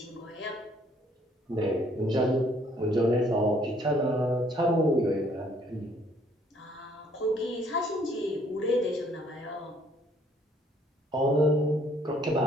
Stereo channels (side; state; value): both; normal; correlation 0.63